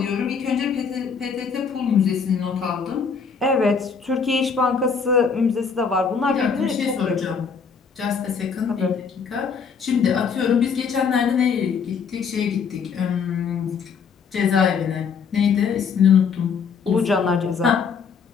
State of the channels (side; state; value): right; quieter; 6.0 dB